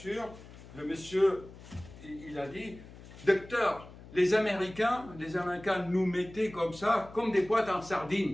le monsieur, il a dit, docteur, les Américains nous mettaient comme ça, comme des boîtes en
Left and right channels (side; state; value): left; noise; hum, 18 dB below the sound